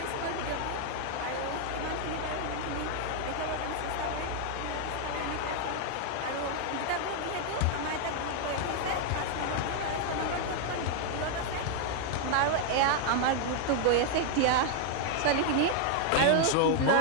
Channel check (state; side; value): different; both; correlation 0.00